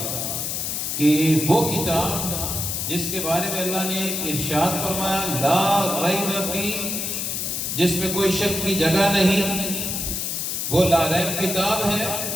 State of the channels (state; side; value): noise; left; hiss, 2 dB below the sound